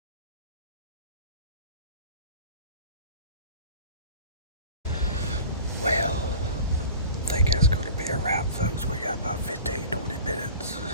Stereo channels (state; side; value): inverted; both; correlation -0.40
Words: Well, I think that's going to be a wrap, folks. We got about 15, 20 minutes